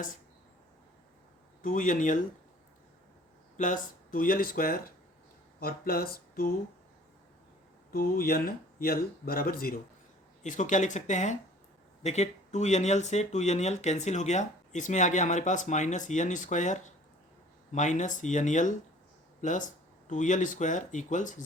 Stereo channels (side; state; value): both; normal; correlation 0.50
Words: 2nl plus 2l² और प्लस 2nl बराबर 0। इसको क्या लिख सकते हैं, देखिए 2nl से 2nl कैंसिल हो गया, इसमें आ गया हमारे पास minus n² minus nl plus 2l² equals